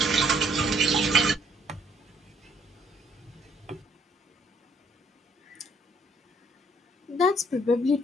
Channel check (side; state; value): both; normal; correlation 0.66